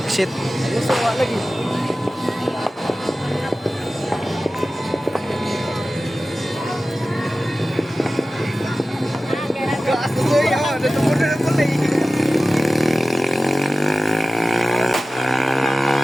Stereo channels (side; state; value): both; normal; correlation 0.96